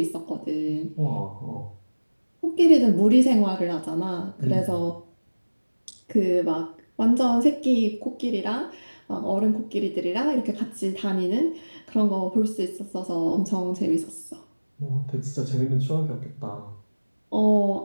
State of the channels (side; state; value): both; inverted; correlation -1.00